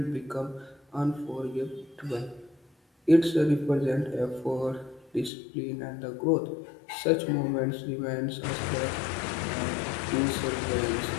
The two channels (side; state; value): right; drops out; at 5.3 s